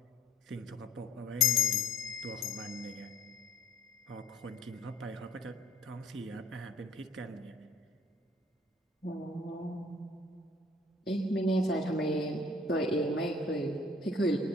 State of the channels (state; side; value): normal; both; correlation 0.55